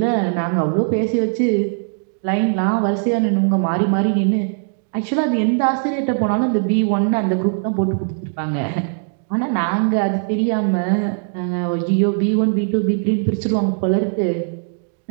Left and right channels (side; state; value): left; silent; digital silence